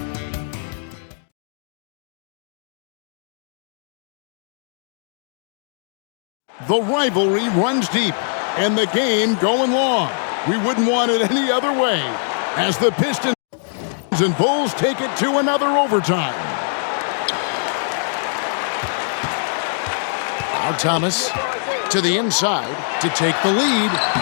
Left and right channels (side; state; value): right; silent; digital silence